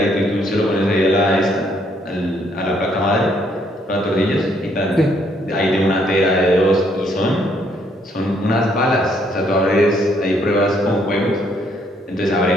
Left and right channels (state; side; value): normal; both; correlation 0.69